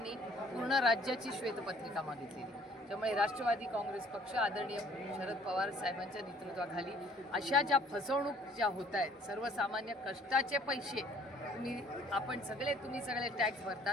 पूर्ण राज्याची श्वेतपत्रिका मागितलेली. त्यामुळे राष्ट्रवादी काँग्रेस पक्ष आदरणीय शरद पवार साहेबांच्या नेतृत्वाखाली अशा ज्या फसवणूक ज्या होत आहेत, सर्वसामान्य कष्टाचे पैसे तुम्ही सगळे टॅक्स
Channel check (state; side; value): normal; both; correlation 0.57